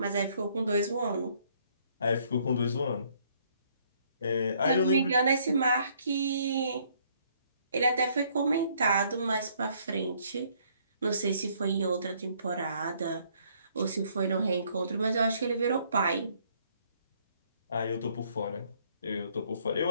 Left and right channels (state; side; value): inverted; both; correlation -0.65